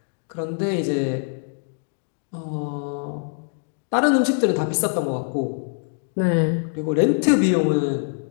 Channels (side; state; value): right; silent; 63 dB below the other